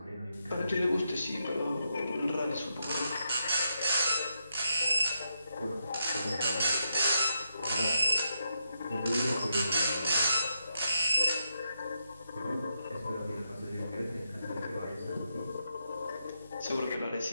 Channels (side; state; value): both; inverted; correlation -0.83